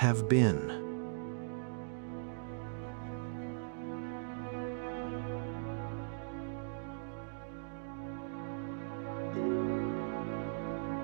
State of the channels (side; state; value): left; silent; digital silence